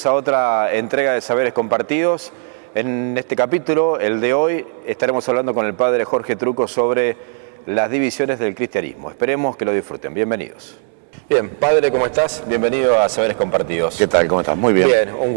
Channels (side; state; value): left; silent; 67 dB below the other